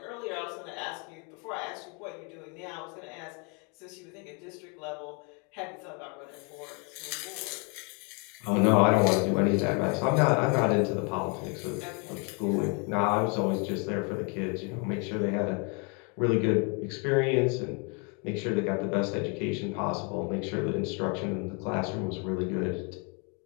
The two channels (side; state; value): right; quieter; 34.4 dB